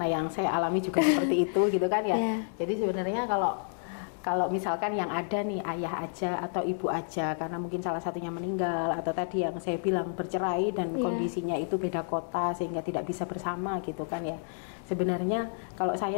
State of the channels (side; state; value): right; silent; 58 dB below the other